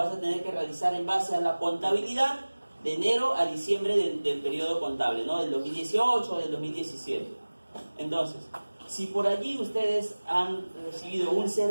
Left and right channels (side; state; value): both; inverted; correlation -1.00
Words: a tener que realizar en base a la contabilidad de enero a diciembre del periodo contable, ¿no? Del 2018 o del 2017. Entonces, si por allí ustedes han recibido un